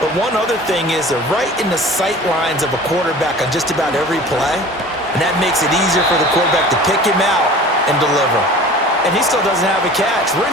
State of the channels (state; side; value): normal; both; correlation 0.42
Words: But one other thing is they're right in the sight lines of a quarterback on just about every play. And that makes it easier for the quarterback to pick him out and deliver. And he still doesn't have a catch. We're